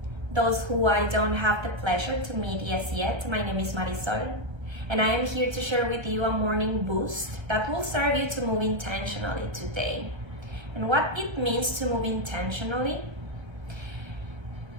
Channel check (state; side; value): late; left; 1.3 ms